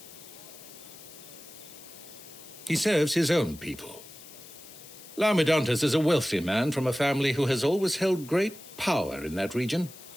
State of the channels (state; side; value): noise; left; hiss, 17 dB below the sound